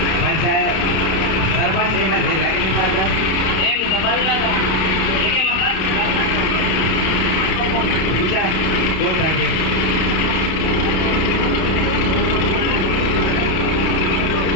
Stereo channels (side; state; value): right; late; 32 ms